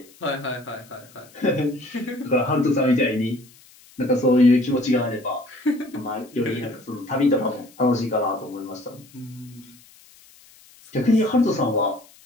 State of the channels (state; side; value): noise; left; hiss, 26 dB below the sound